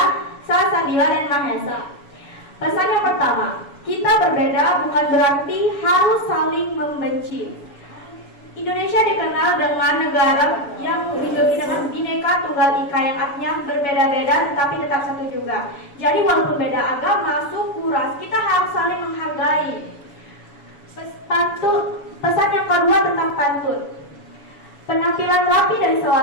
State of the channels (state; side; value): late; right; 7.1 ms